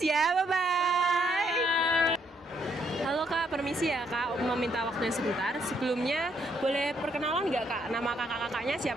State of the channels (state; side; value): normal; both; correlation 0.72